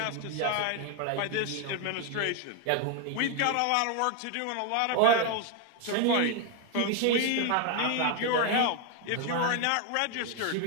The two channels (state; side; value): different; both; correlation 0.01